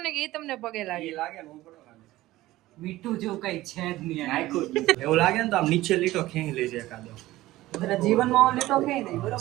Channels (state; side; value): quieter; left; 16.9 dB